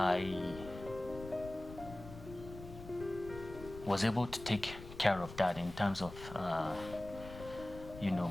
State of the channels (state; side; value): noise; left; rumble, 14 dB below the sound